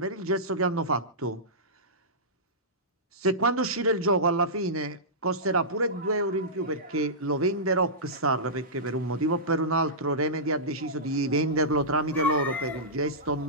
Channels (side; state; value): both; normal; correlation -0.16